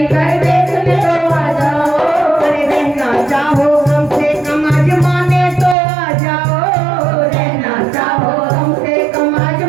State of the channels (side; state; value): left; drops out; at 5.8 s